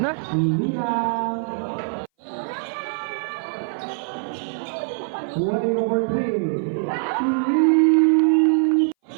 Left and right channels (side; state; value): left; silent; 60 dB below the other